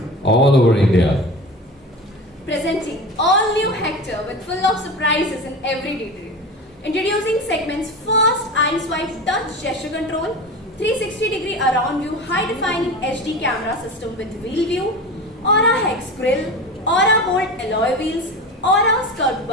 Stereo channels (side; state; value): both; normal; correlation 0.30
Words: all over India. Presenting all new Hector with full of surprises in every detail. Introducing segment's first eye-swipe touch gesture control, 360-degree around view high-defining HD camera system with wheel view, Aura Hex grille, Aura Bolt alloy wheels, Aura skirt